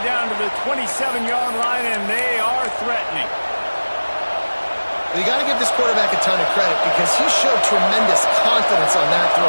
to the 27-yard line, and they are threatening. You got to give this quarterback a ton of credit because he showed tremendous confidence on that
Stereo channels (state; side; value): inverted; both; correlation -1.00